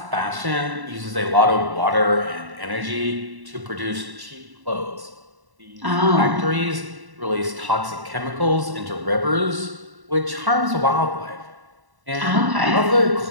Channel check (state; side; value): late; left; 1.1 ms